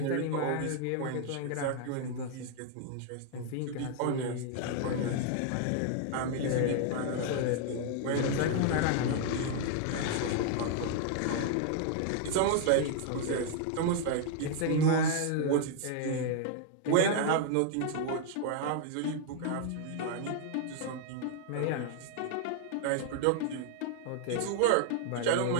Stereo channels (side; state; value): both; different; correlation 0.00